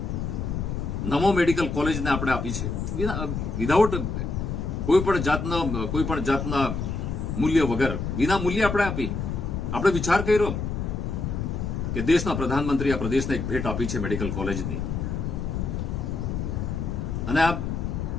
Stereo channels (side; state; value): left; noise; rumble, 3 dB below the sound